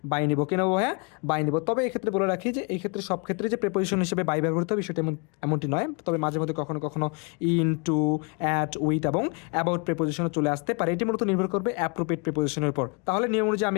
বাই নিব। কি নেবো ভাইয়া? বাই নিব। তবে এক্ষেত্রে বলে রাখি যে এই ক্ষেত্রে সব ক্ষেত্রে যে প্রেপোজিশন হিসেবে বাই ব্যবহৃত হবে সেটা এমনটি নয়। তবে মাঝে মধ্যে কখনো কখনো ইন, টু, অ্যাট, উইথ এবং অ্যাবাউট প্রেপোজিশনও চলে আসতে পারে। এটি মূলত নির্ভর করবে অ্যাপ্রোপ্রিয়েট প্রেপোজিশনের উপর। তাহলে নিয়ম অনুযায়ী আমি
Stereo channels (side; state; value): right; quieter; 33.5 dB